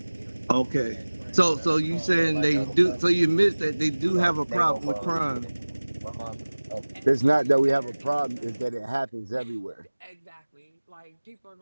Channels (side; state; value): both; inverted; correlation -1.00